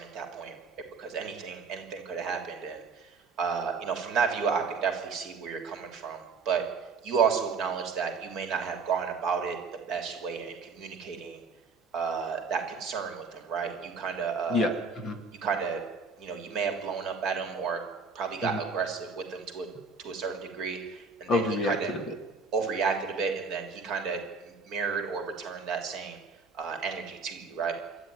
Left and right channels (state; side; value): quieter; left; 4.4 dB